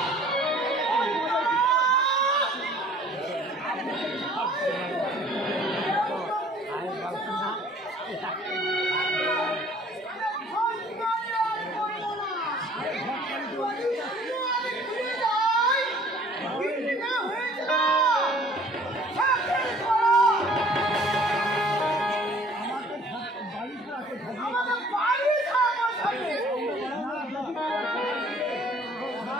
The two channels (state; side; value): normal; both; correlation 0.54